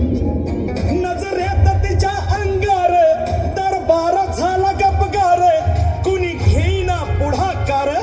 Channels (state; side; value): identical; both; correlation 1.00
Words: नजरेत तिच्या अंगार दरबार झाला गपगार. कुणी घेईना पुढाकार,